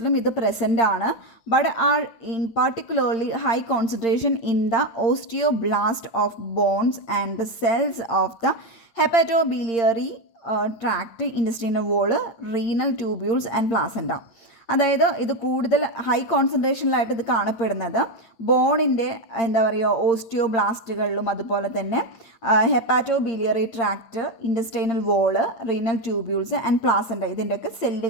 ഇത് പ്രസൻ്റ് ആണ്. But are in particularly high concentration in the osteoblast of bones and the cells of the hepatobiliary tract, intestinal wall, renal tubules and placenta. അതായത് ഇത് കൂടുതൽ ഹൈ കോൺസെൻട്രേഷനിലായിട്ട് ഇത് കാണപ്പെടുന്നത് ബോണിൻ്റെ എന്താ പറയുക ഓസ്റ്റിയോബ്ലാസ്റ്റുകളിലും അതുപോലെ തന്നെ hepatobiliary tract, intestinal wall, renal tubules and placenta ഇതിൻ്റെയൊക്കെ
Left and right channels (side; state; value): right; late; 8.7 ms